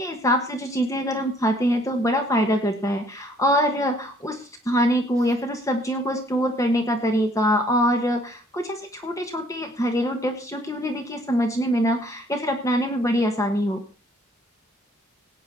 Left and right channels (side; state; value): both; normal; correlation 0.61